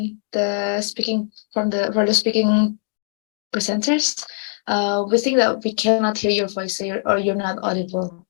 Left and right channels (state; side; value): silent; right; digital silence